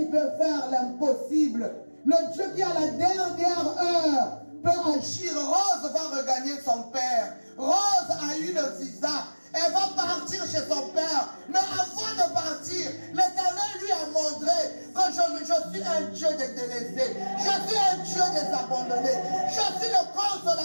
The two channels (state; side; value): inverted; both; correlation -1.00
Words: peut faire l'impossible, le Dieu qui à la dernière heure peut agir. Rose va regagner son père. Rose a eu le visa. Elle va partir chez son père. Mais avant de partir, l'Éternel lui a montré que je suis un Dieu des délaissés. Je suis un Dieu des abandonnés. Je suis le